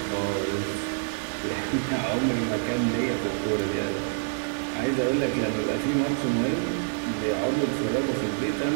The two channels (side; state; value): left; silent; digital silence